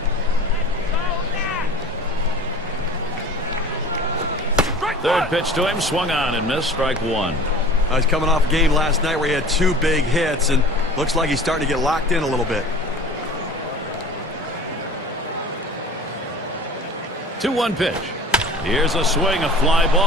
Third pitch to him, swung on and missed, strike 1. He's coming off a game last night where he had 2 big hits, and looks like he's starting to get locked in a little bit. 2-1 pitch. Here's a swing, a fly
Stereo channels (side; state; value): both; normal; correlation 0.41